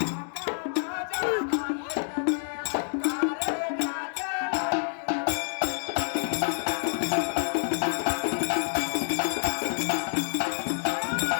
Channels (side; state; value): right; silent; digital silence